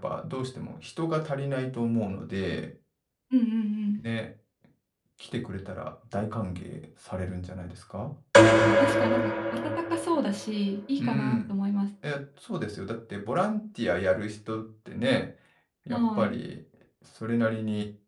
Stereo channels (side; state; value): both; identical; correlation 1.00